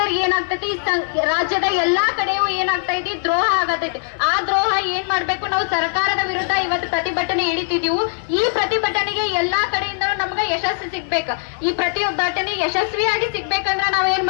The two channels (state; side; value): silent; right; 59 dB below the other